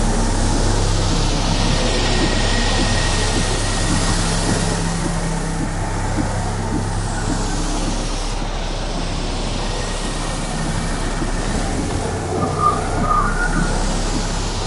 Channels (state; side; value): identical; both; correlation 1.00